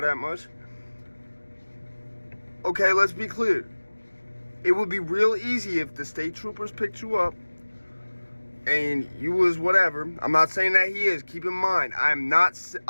that much. Okay, let's be clear. It would be real easy if the state troopers picked you up and you was whatever. I'm not saying that he is. Keep in mind, I'm not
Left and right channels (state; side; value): inverted; both; correlation -1.00